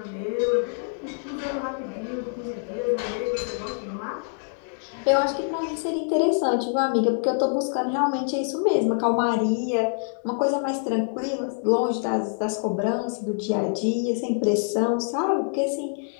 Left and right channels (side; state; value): right; silent; 61 dB below the other